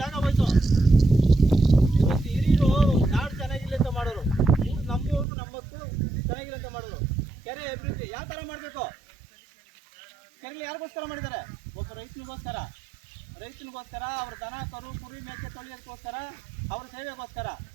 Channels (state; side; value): drops out; left; at 5.2 s